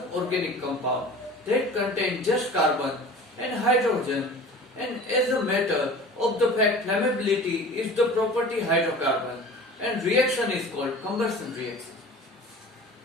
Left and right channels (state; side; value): normal; both; correlation 0.40